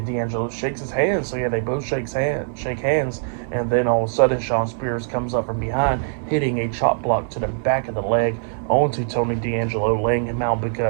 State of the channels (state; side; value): silent; left; 64 dB below the other